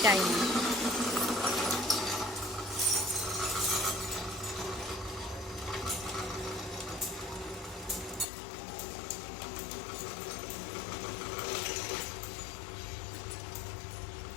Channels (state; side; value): drops out; right; at 8.2 s